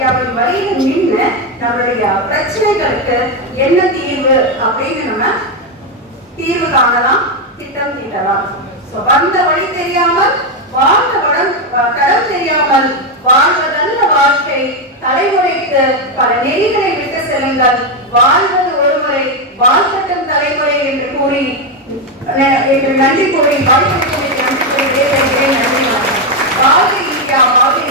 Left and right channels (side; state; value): both; normal; correlation 0.06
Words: வழியில் நின்று நம்மளுடைய பிரச்சனைகளுக்கு என்ன தீர்வு அப்படின்னு நம்ம தீர்வு காணலாம், திட்டம் தீட்டலாம். வந்த வழி தெரியாமல் வாழ்ந்த தடம் தெரியாமல் வாழ்வதல்ல வாழ்க்கை, தலைமுறைக்கு பல நெறிகளை விட்டு செல்லுங்கள், வாழ்வது ஒருமுறை வாழ்க்கட்டும் தலைமுறை என்று கூறி நன்றி கூறி